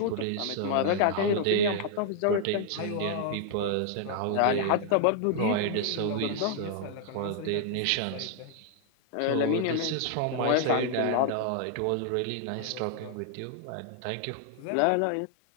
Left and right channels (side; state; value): both; different; correlation 0.00